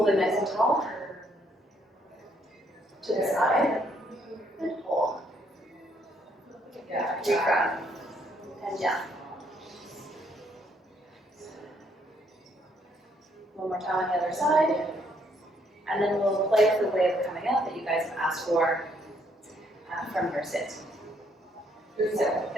it nice and tall. To the side and hold. Re-grab and down. One more time on the other side. And then we'll play with the way of coming out that you guys have asked for from your sit. So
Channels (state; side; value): normal; both; correlation 0.69